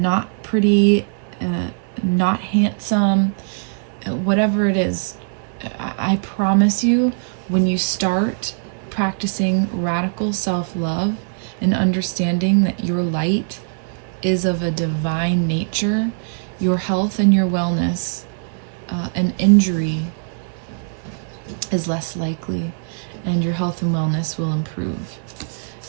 pretty, not handsome, whatever it is, I promise you, when you start practicing radical self-love and understanding that your light is of a divine nature, your health and your wellness, an injury is less likely, and your health and wellness will improve.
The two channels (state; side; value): silent; left; 62 dB below the other